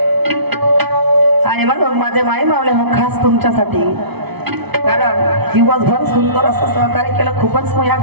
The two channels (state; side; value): late; left; 0.99 ms